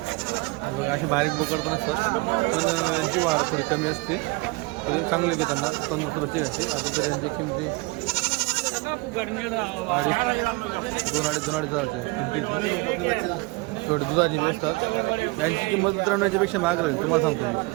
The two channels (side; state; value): left; quieter; 25.6 dB